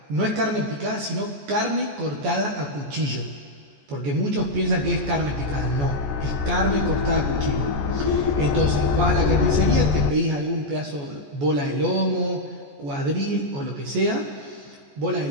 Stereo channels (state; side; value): late; left; 14 ms